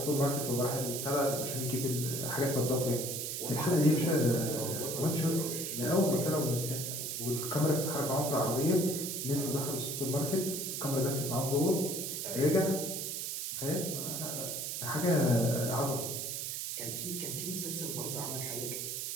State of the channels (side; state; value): right; noise; hiss, 3 dB below the sound